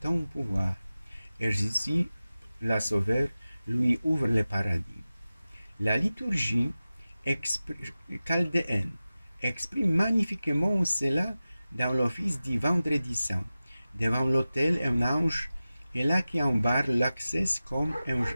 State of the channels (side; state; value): both; inverted; correlation -0.96